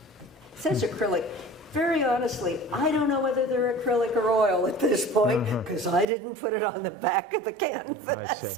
it says acrylic. Very honestly, I don't know whether they're acrylic or oil at this point, because I didn't put it on the back of the canvas I see.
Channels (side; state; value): left; drops out; at 6.1 s